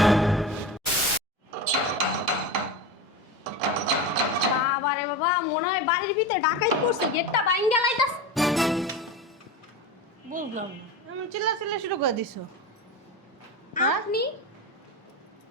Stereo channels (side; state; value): both; normal; correlation 0.24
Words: বাবা রে বাবা, মনে হয় বাড়ির ভিতরে ডাকাইত করছে, গেটটা বাইঙ্গা লাইতাস। বুঝলাম না, আমি চিল্লা শুরু করে দিছো। হ্যাঁ? আপনি